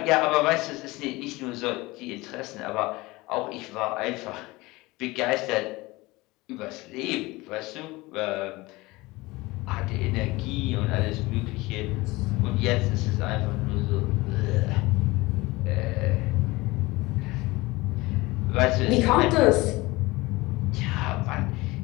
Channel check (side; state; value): right; quieter; 21.5 dB